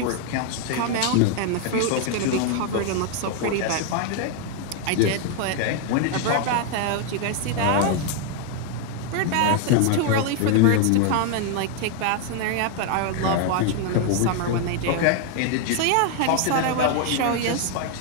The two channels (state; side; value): different; both; correlation 0.00